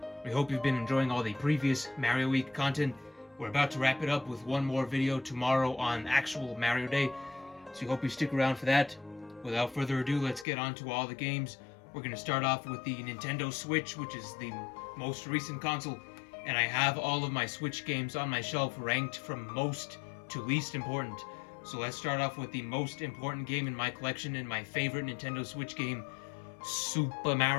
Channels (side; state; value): right; drops out; at 10.5 s